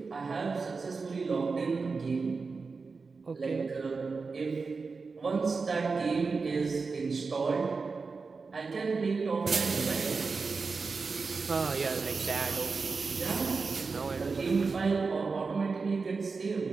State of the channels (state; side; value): quieter; left; 4.5 dB